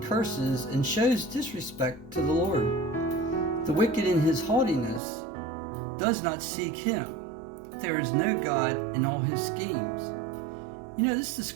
and shows disrespect to the Lord. The wicked in his haughtiness does not seek him. There is no God in all his schemes." You know, this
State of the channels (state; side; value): drops out; left; at 5.0 s